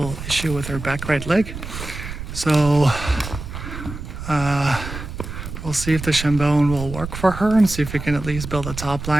issue with her back right leg. So we'll see if the shin bone will work for her and see if we can at least build a top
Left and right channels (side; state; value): right; noise; rumble, 9 dB below the sound